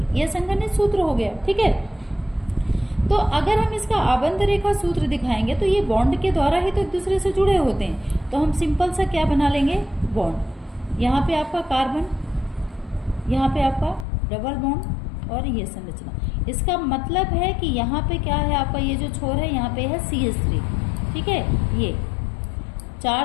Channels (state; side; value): drops out; right; at 14.1 s